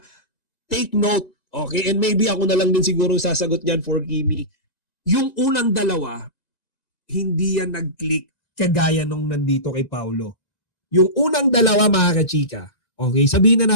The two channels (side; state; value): right; late; 1.9 ms